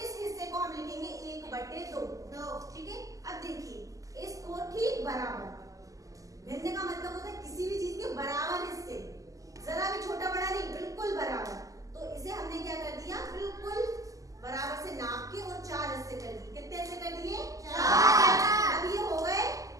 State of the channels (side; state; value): left; late; 0.16 ms